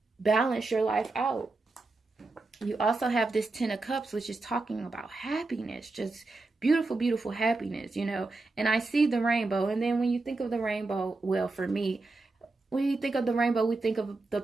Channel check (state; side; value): quieter; left; 3.4 dB